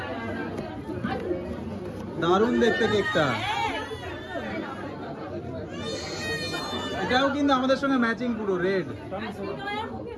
দারুণ দেখতে কেকটা। এটাও কিন্তু আমাদের সঙ্গে ম্যাচিং, পুরো রেড।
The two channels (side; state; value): both; identical; correlation 1.00